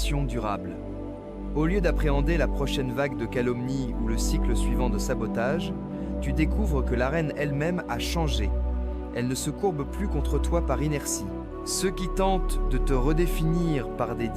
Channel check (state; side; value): identical; both; correlation 1.00